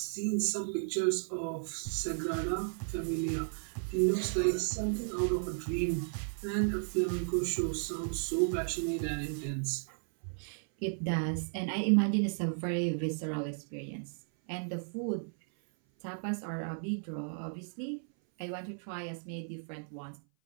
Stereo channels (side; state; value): left; silent; 55 dB below the other